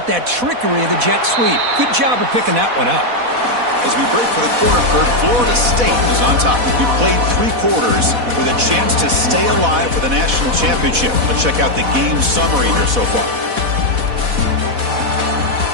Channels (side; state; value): left; late; 4.1 ms